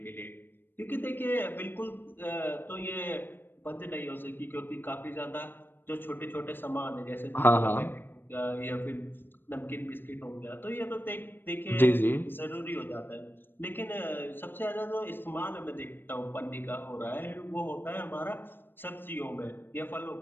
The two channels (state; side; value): late; right; 0.097 ms